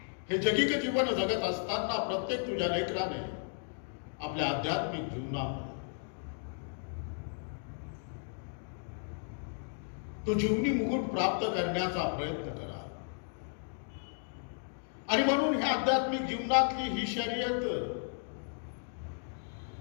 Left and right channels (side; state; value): right; silent; 55 dB below the other